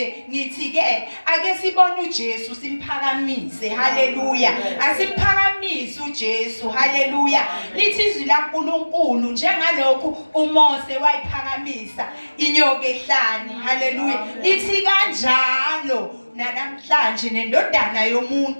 ngithi ke ake sibone uJesu simphakamise. Haleluya. Asiphakamise uJesu. Haleluya. Lithi izwi laNkulunkulu njengalokhu uMose wayiphakamisa inyoka ehlane. Haleluya. Lithi kanjalo namhlanje nendodana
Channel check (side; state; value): both; inverted; correlation -1.00